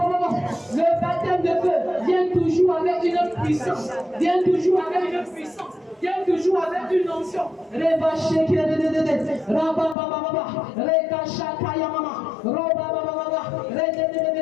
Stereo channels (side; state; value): right; drops out; at 10.0 s